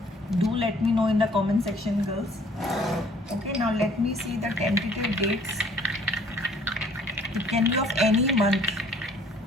Do let me know in the comment section, girls. Okay, now let me see the tentative dates. It can be of any month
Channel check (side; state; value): both; normal; correlation 0.58